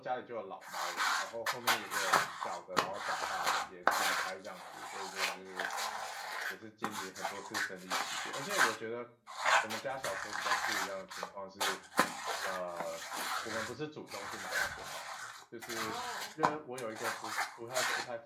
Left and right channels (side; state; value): both; identical; correlation 1.00